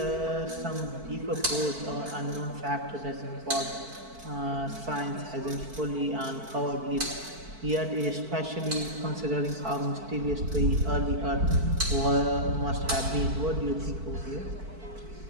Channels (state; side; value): late; left; 4.5 ms